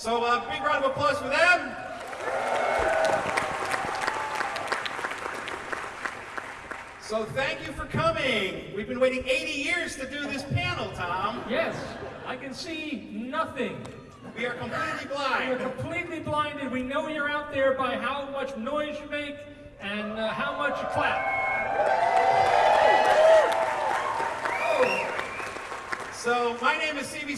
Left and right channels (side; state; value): both; identical; correlation 1.00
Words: big round of applause for them. So thank you for coming. We've been waiting 80 years to do this panel, Tom. Yes, I can see nothing. We are completely blind. We are completely blinded. We know you're out there by how much noise you make and how much you clap. So my name is